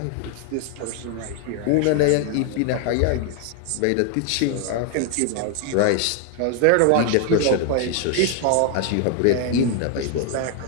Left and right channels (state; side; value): different; both; correlation 0.00